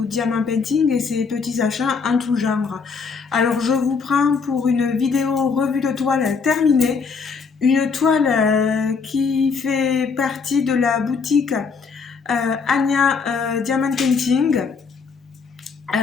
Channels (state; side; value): quieter; right; 5.2 dB